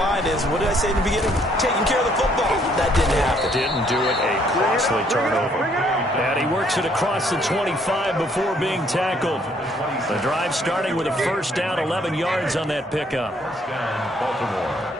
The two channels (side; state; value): both; normal; correlation 0.66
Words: is, what did I say in the beginning? Taking care of the football. That didn't happen. Didn't do it. A costly turnover. And he works it across the 25 before being tackled. The drive starting with a first down, 11 yards on that pickup.